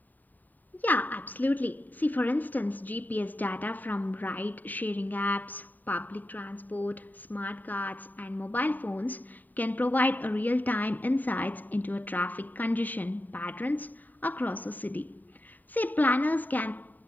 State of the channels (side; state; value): right; late; 0.086 ms